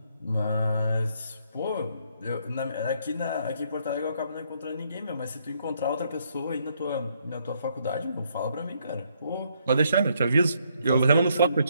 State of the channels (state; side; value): inverted; both; correlation -0.72